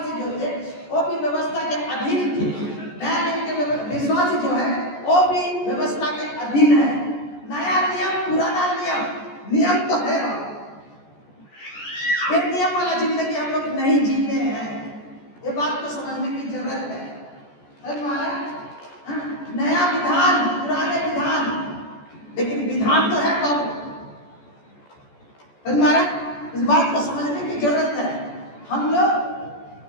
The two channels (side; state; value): right; late; 14 ms